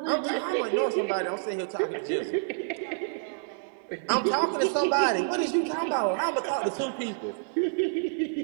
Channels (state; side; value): silent; left; 59 dB below the other